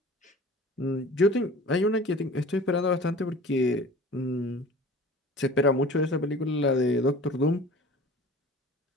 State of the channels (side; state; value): both; normal; correlation 0.43